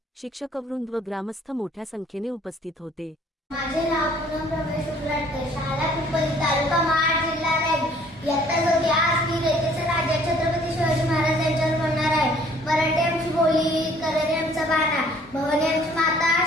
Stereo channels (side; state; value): both; normal; correlation 0.58